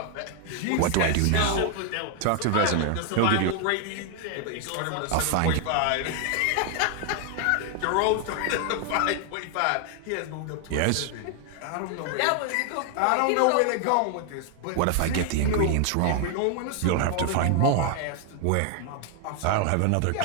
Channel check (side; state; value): both; different; correlation 0.00